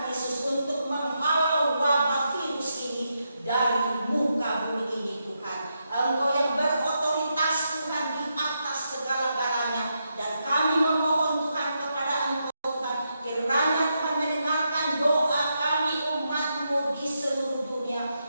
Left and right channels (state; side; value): inverted; both; correlation -0.83